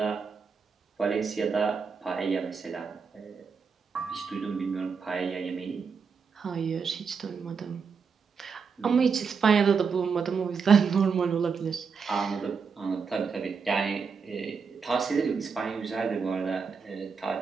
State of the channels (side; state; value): left; quieter; 5.7 dB